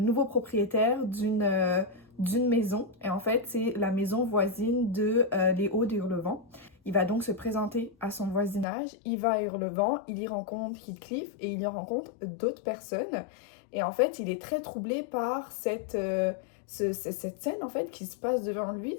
propriétaire d'une maison. Et en fait, c'est la maison voisine de Les Hauts de Hurlevent. Il va donc se présenter à son voisinage, il va à Hurlevent, il y rencontre Heathcliff et il y rencontre d'autres personnes. Et en fait, il est très troublé par cette scène en fait qui se passe devant lui,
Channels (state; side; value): drops out; right; at 8.7 s